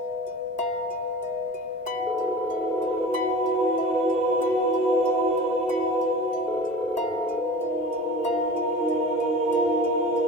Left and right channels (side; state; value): both; normal; correlation 0.37